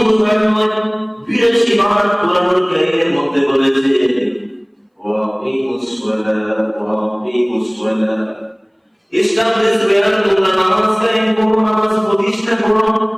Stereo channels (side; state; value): both; identical; correlation 1.00